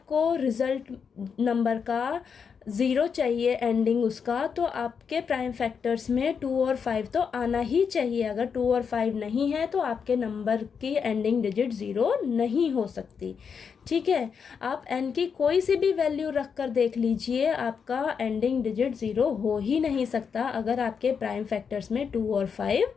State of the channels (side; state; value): right; quieter; 6.4 dB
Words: रिजल्ट नंबर का ज़ीरो चाहिए एंडिंग उसका, तो आपके प्राइम फैक्टर्स में 2 और 5 तो आना ही चाहिए। अगर 2 और 5 नहीं है तो आपके नंबर की एंडिंग डिजिट ज़ीरो नहीं हो सकती। ठीक है, आप n की कोई सी भी वैल्यू रख कर देख लीजिए, आपका एंडिंग डिजिट ज़ीरो हो ही नहीं सकता अगर आपके प्राइम फैक्टर्स में 2 और